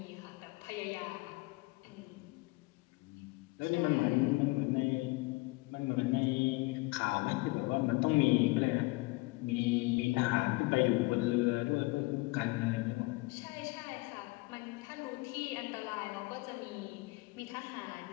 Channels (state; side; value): quieter; right; 23.8 dB